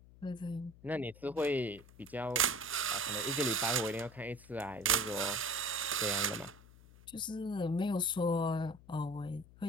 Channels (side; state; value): left; noise; hum, 22 dB below the sound